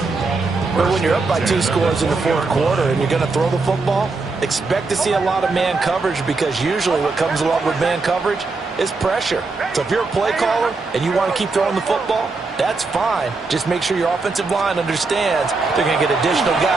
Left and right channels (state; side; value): quieter; left; 3.9 dB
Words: But when you're up by 2 scores in the 4th quarter and you're going to throw the football, expect to see a lot of man coverage, because usually what comes along with man coverage is pressure. So if you're a play caller and you want to keep throwing the football, that's fine. Just make sure your offensive line understands they're going to get additional